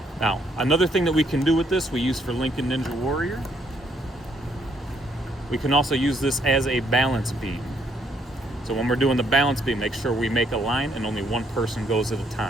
Now, another thing that we can do with this, we use for Lincoln Ninja Warrior. We can also use this as a balance beam. So when we're doing the balance beam, make sure we make a line and only one person goes at a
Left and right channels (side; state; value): both; normal; correlation 0.70